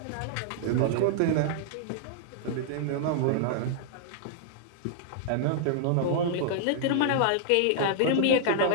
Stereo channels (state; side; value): different; both; correlation -0.01